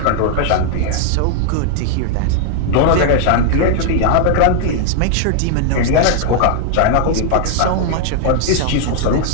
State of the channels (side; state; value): both; different; correlation 0.00